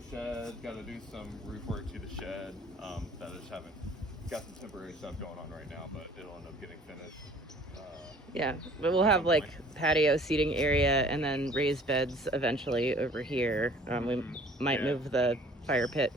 shed, got to do some roof work to the shed. That I just haven't got some temporary stuff going on right now, but it'll end up getting finished. Yeah, but we'll have like patio seating area and then raised beds eventually over here. We might move the fire pit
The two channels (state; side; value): normal; both; correlation 0.52